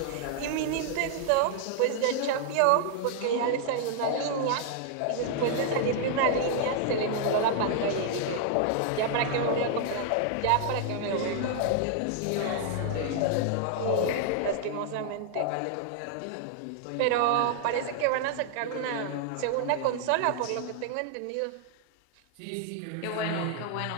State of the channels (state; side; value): different; both; correlation 0.00